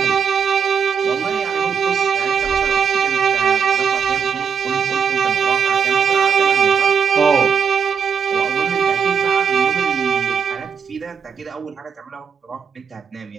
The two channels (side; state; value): left; quieter; 6.7 dB